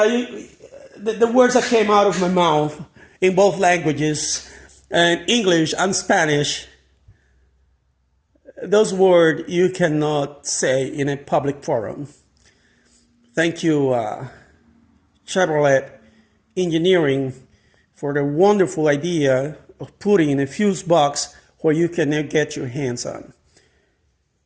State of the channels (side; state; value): both; identical; correlation 1.00